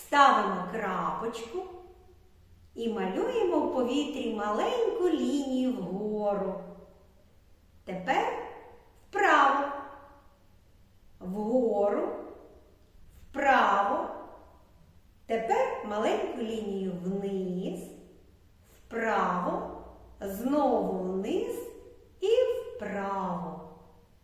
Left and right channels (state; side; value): identical; both; correlation 1.00